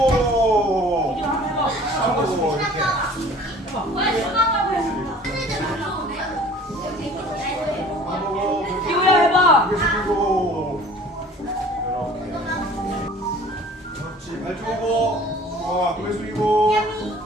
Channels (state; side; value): normal; both; correlation 0.48